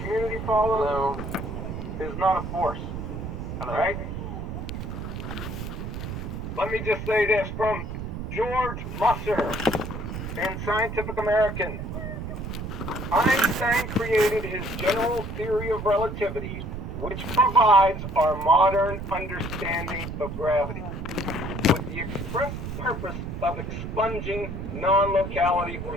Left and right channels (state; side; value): noise; right; rumble, 6 dB below the sound